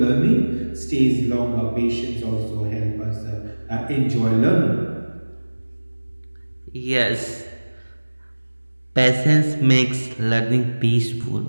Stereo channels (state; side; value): inverted; both; correlation -1.00